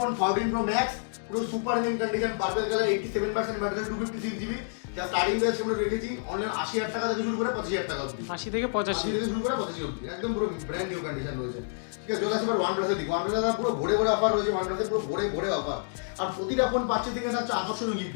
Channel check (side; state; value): right; silent; digital silence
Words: 14 pro max পুরো super mint condition, purple colour, 87% battery, 256 GB. যা স্টার্টিং প্রাইস আমরা রেখেছি অনলাইন 80,000 টাকা থেকে শুরু করে 25,000 টাকা অবধি। 80 থেকে 85 থেকে শুরু করে 25 অবধি, একদম পুরো ব্র্যান্ড নিউ কন্ডিশন রয়েছে, ঠিক আছে? চলে আসছে এবার OnePlus এর দিকে। OnePlus এর পুরো ভরে ভরে অফার রয়েছে, OnePlus এর পুরো ভরে ভরে অফার। আর প্রতিটা ফোন পাচ্ছে থেকে থাকছে আকর্ষণীয়